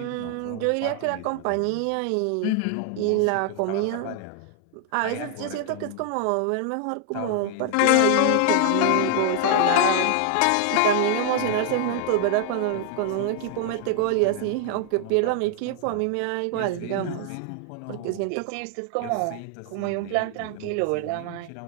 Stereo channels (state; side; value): different; both; correlation 0.00